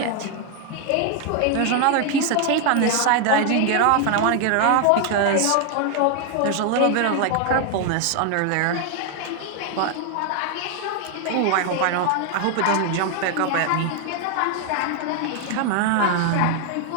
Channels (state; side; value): different; both; correlation 0.00